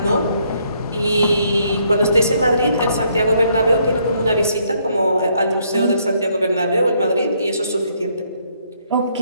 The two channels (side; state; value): both; inverted; correlation -0.70